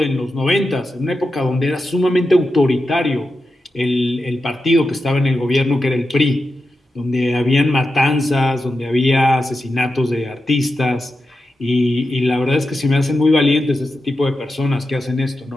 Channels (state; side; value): normal; both; correlation 0.89